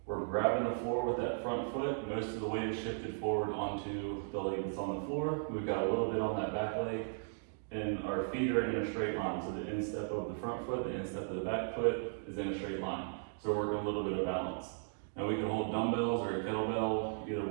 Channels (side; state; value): left; silent; digital silence